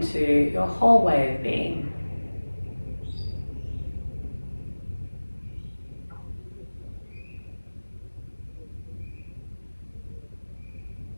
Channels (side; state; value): both; inverted; correlation -1.00